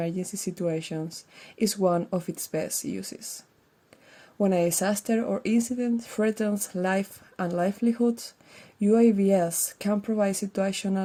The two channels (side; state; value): both; identical; correlation 1.00